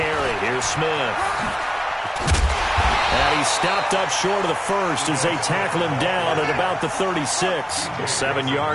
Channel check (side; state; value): both; identical; correlation 1.00